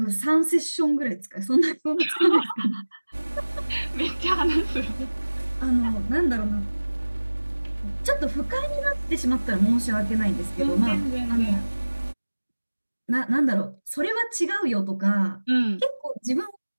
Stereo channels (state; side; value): inverted; both; correlation -1.00